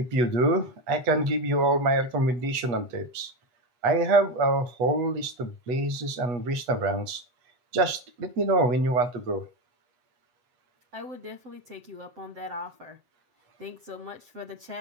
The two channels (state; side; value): late; left; 8.2 ms